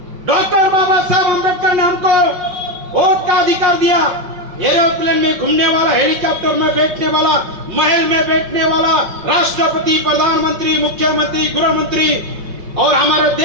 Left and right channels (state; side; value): late; left; 5.6 ms